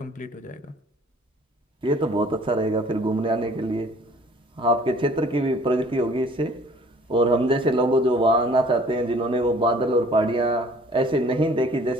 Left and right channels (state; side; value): normal; both; correlation 0.54